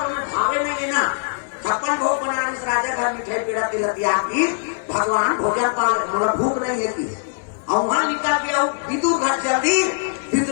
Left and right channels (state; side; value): silent; right; digital silence